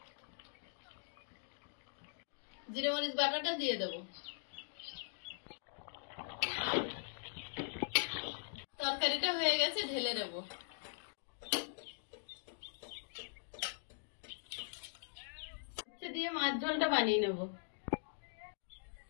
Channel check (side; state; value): right; silent; digital silence